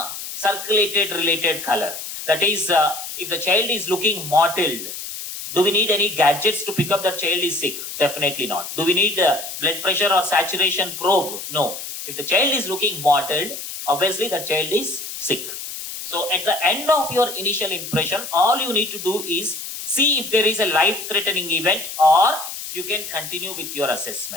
circulated related color. That is, if the child is looking mottled, do we need any gadgets to pick up that child is sick? Definitely not. Do we need blood pressure or saturation probe? No. If the child is looking mottled, obviously the child is sick. So at the end of your initial impression, all you need to do is see if there is a life-threatening event or you can continue with your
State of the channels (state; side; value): noise; left; hiss, 8 dB below the sound